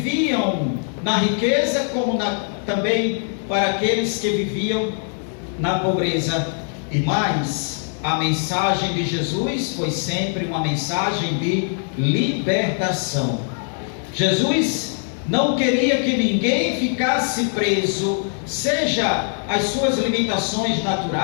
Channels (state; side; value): silent; right; 57 dB below the other